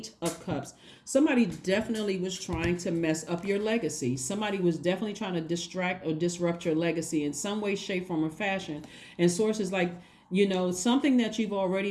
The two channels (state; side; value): identical; both; correlation 1.00